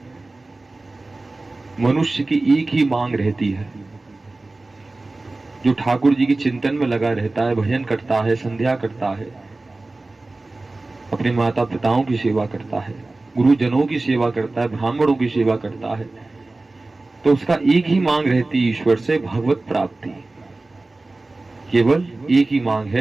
मनुष्य की एक ही मांग रहती है, जो ठाकुर जी के चिंतन में लगा रहता है, भजन करता है, संध्या करता है, अपने माता पिताओं की सेवा करता है, गुरुजनों की सेवा करता है, ब्राह्मणों की सेवा करता है, तो उसका एक ही मांग रहती है ईश्वर से, भगवत प्राप्ति। केवल एक ही मांग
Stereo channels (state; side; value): quieter; left; 3.1 dB